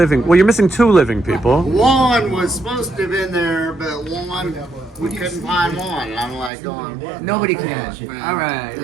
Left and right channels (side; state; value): left; drops out; at 6.5 s